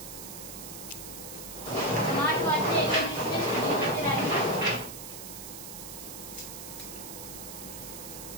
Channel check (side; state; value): right; noise; hiss, 10 dB below the sound